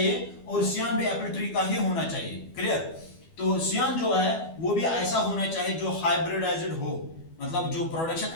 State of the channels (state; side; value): late; right; 12 ms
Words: और सियान भी एप्पल ट्री का ही होना चाहिए। क्लियर? तो सियान जो है वो भी ऐसा होना चाहिए जो हाइब्रिडाइज्ड हो, मतलब जो प्रोडक्शन